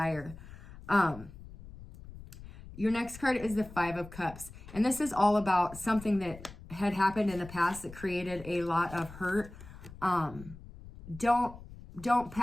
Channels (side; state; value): left; noise; rumble, 16 dB below the sound